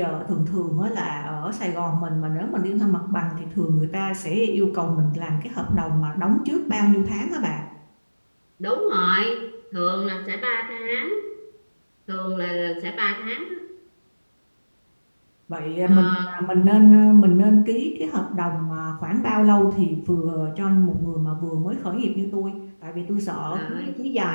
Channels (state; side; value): inverted; both; correlation -1.00